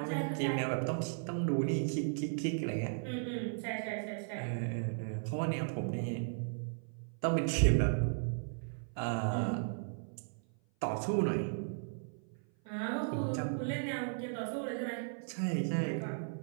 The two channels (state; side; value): silent; left; 54 dB below the other